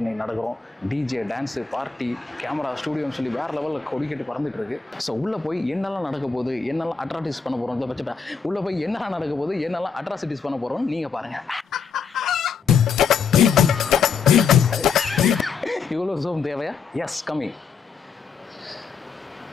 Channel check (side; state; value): right; quieter; 5.7 dB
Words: இன்னைக்கு நடக்கிறோம். டிஜே, டான்ஸு, பார்ட்டி, கேமரா, ஸ்டூடியோன்னு சொல்லி வேறு லெவலில் கொடிக்கட்டு பறந்துட்டு இருக்கு. ஸோ உள்ளே போய் என்னெல்லாம் நடக்க போகுது, என்னெல்லாம் அட்ராசிட்டிஸ் பண்ண போகிறோம், பட்சத்தை உள்ளே போய் என்னெல்லாம் நடக்க போகுது, என்னெல்லாம் அட்ராசிட்டிஸ் பண்ண போகிறோம்னு நீங்கள் பாருங்கள். இவ்வளோ ஜூம் தேவையா? எஸ், கம்மி.